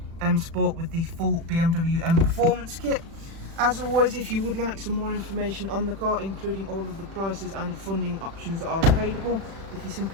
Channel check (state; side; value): late; left; 36 ms